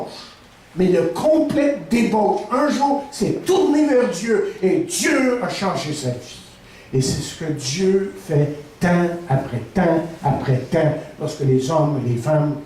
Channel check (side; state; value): both; identical; correlation 1.00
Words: mais de complète débauche, un jour s'est tourné vers Dieu et Dieu a changé sa vie. Et c'est ce que Dieu fait temps après temps après temps, lorsque les hommes et les femmes